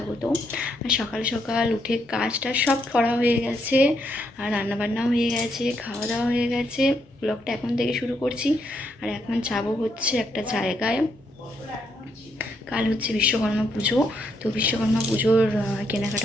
আর সকাল সকাল উঠে কাজটা সব করা হয়ে গেছে, আর রান্নাবান্নাও হয়ে গেছে, খাওয়া দাওয়া হয়ে গেছে। ব্লগটা এখন থেকে শুরু করছি। আর এখন যাবো হচ্ছে একটা জায়গায়। কাল হচ্ছে বিশ্বকর্মা পুজো, তো বিশ্বকর্মা পুজোর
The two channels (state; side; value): normal; both; correlation 0.76